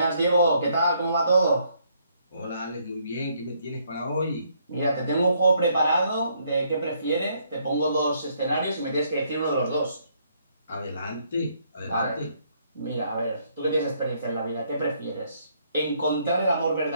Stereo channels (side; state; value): both; inverted; correlation -0.70